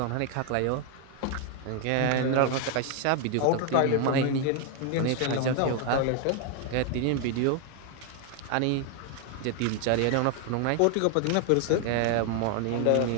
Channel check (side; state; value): both; different; correlation 0.01